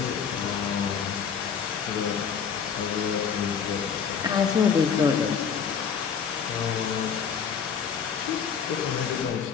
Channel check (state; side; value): quieter; right; 6.9 dB